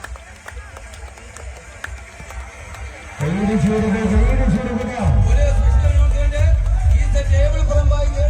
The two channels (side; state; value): both; identical; correlation 1.00